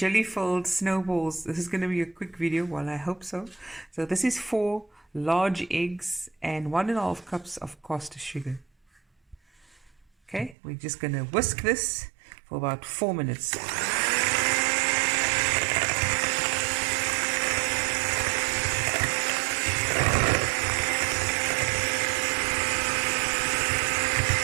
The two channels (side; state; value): left; drops out; at 10.6 s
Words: snowballs. This is going to be a quick video. Well, I hope so. So this is 4 large eggs and 1.5 cups of caster sugar. Okay, we're just going to whisk this for about 4 minutes.